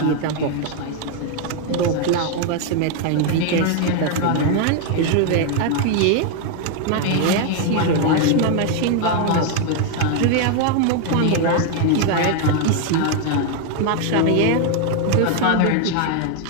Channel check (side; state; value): both; different; correlation 0.01